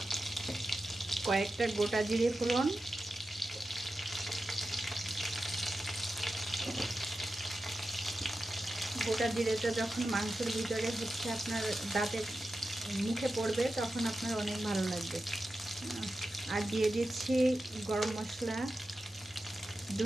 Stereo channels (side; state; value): both; normal; correlation 0.92